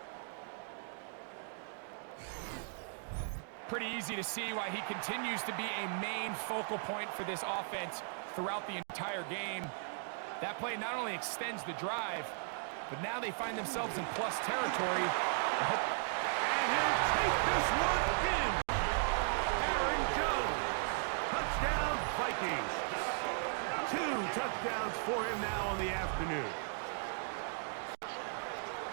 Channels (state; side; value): silent; left; digital silence